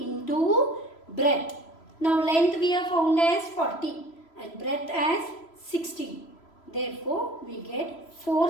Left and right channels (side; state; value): right; late; 3.0 ms